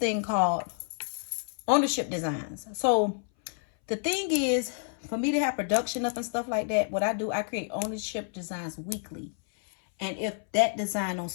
called ownership designs. So the thing is, for me to have production up and stuff like that, what I do, I create ownership designs weekly. And if that design don't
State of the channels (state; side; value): silent; right; 58 dB below the other